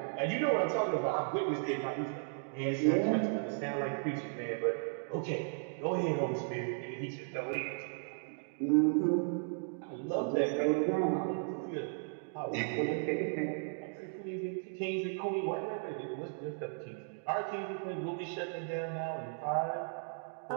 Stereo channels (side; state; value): left; silent; digital silence